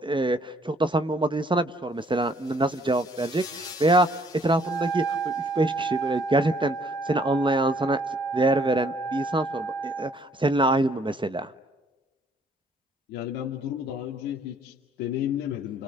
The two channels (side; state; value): both; normal; correlation 0.63